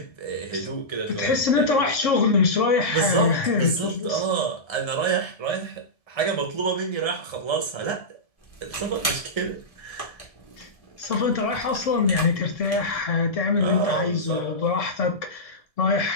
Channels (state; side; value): late; right; 1.7 ms